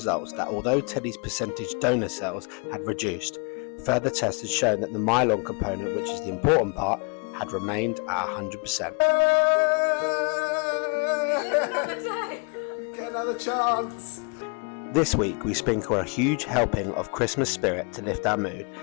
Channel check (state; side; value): quieter; right; 35.0 dB